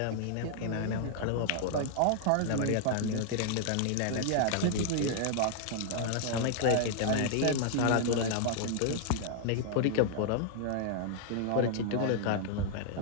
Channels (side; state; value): both; different; correlation 0.00